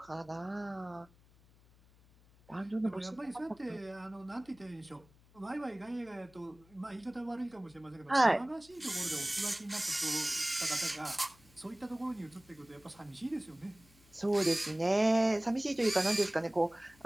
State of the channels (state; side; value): noise; left; hum, 27 dB below the sound